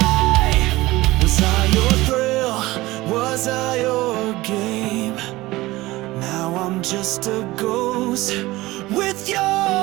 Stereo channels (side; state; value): left; quieter; 19.0 dB